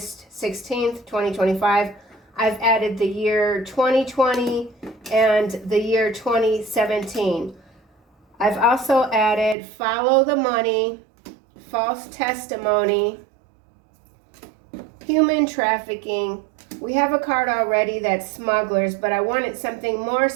16th, 2025, I've added the year 2020 and the year 2017. I've also added follow the money, false testimony, human trafficking. We have a card already that's smugglers, but I wanted something more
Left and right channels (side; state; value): left; drops out; at 9.6 s